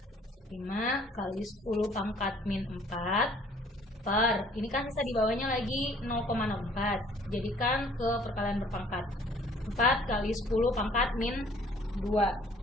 5 kali 10 pangkat min 4 per, ini kan sisa di bawahnya lagi 0,04. Jadikan ke perkalian berpangkat. 4 kali 10 pangkat min 2.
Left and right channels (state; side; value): normal; both; correlation 0.57